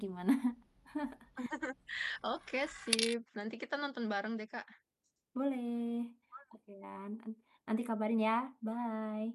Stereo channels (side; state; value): both; identical; correlation 1.00